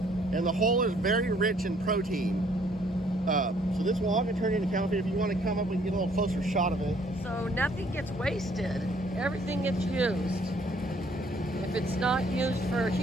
and the whole is very rich in protein. So this will all get turned into cattle feed. If you want to come up, we can get a little closer shot of it. So nothing gets wasted. Everything gets used. If it's not used for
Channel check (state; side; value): normal; both; correlation 0.63